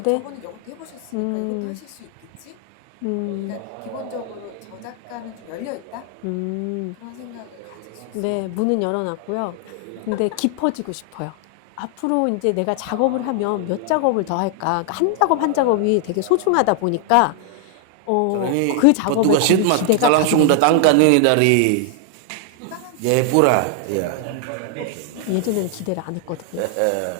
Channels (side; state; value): both; different; correlation 0.00